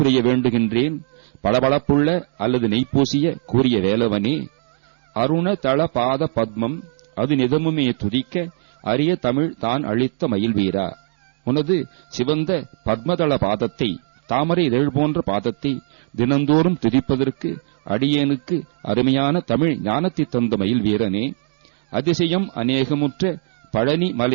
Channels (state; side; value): silent; left; digital silence